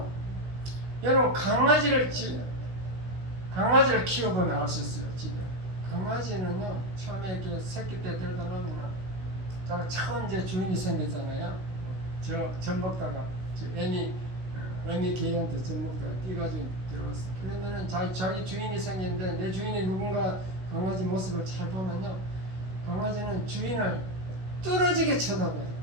여러분 강아지를 키워보면 알 수 있어요. 집에 강아지는요 처음에 이렇게 새끼 때 데려다 놓으면 처음 이제 주인이 생겼잖아요. 젖 먹다가 어미 개한테 젖 먹다가 뛰가지고 들어갔어. 그러면은 자기 주인이 생겼는데 내 주인이 누군가 강아지 모습을 잘 보면요, 강아지는 주인을 뚫어지게 쳐다봐요.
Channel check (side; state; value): left; late; 16 ms